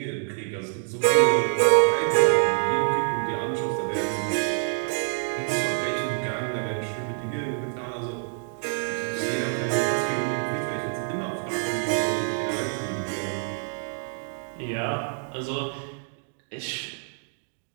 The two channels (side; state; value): left; silent; 60 dB below the other